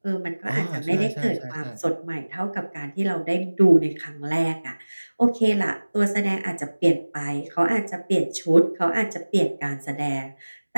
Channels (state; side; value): inverted; both; correlation -1.00